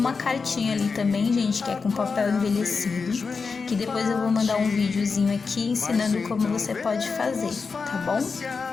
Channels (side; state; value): right; quieter; 4.9 dB